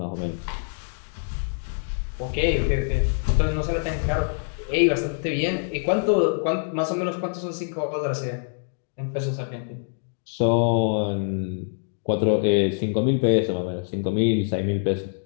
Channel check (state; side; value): silent; right; digital silence